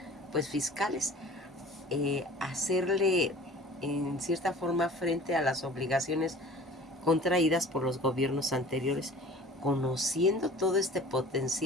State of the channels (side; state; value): both; normal; correlation 0.44